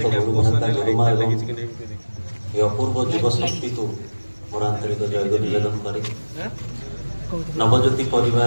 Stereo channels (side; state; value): both; inverted; correlation -1.00